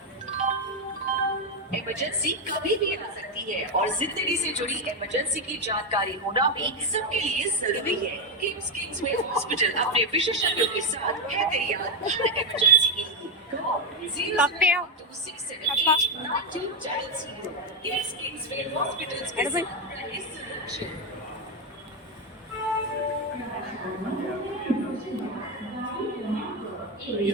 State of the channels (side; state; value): both; normal; correlation 0.04